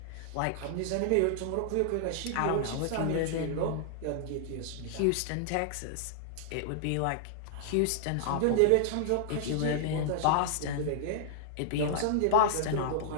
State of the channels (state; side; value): different; both; correlation -0.01